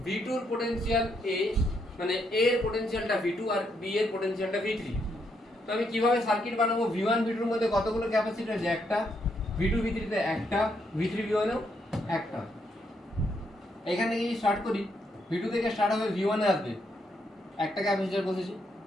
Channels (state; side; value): normal; both; correlation 0.76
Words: v2 এর পোটেনশিয়াল a মানে a এর পোটেনশিয়ালটা v2 আর b এর পোটেনশিয়ালটা v3 তো আমি কিভাবে সার্কিট বানাবো v1 v2 এর মধ্যে কতগুলো ক্যাপাসিটর আছে একটা v2 v3 তে একটা v3 v1 এও একটা এখান থেকে যদি স্টার্ট করি v2 থেকে স্টার্ট হবে v1 এ আসবে একটা ক্যাপাসিটর বসেছি